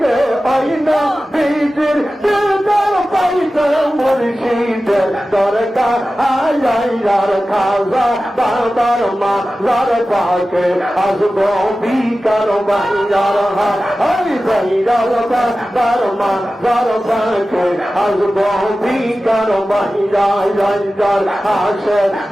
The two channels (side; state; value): both; normal; correlation 0.95